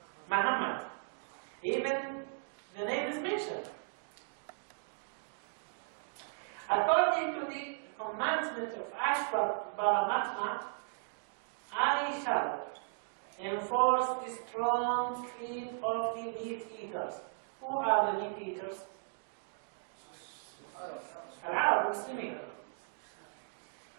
Muhammad. Even the name is mentioned. According to the commandment of Ashwar Paramatma, I shall enforce the strong creed of the meat eaters. Who are the meat eaters? Al-Arab Muslimin.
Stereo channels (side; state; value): left; silent; digital silence